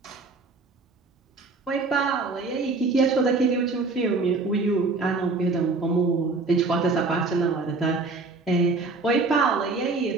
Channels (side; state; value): left; quieter; 3.8 dB